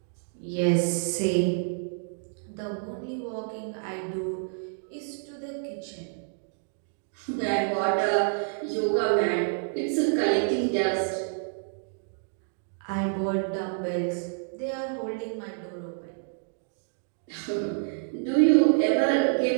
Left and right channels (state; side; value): silent; left; digital silence